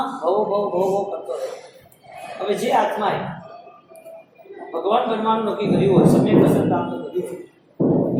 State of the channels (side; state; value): both; identical; correlation 1.00